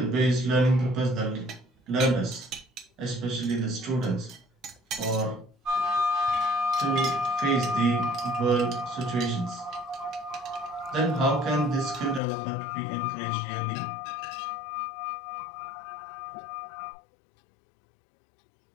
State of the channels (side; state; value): right; drops out; at 12.2 s